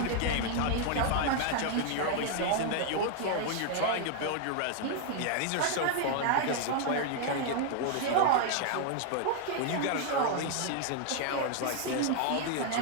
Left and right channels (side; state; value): both; different; correlation 0.00